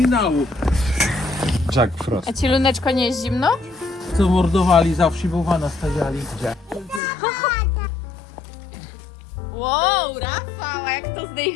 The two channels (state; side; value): drops out; right; at 7.0 s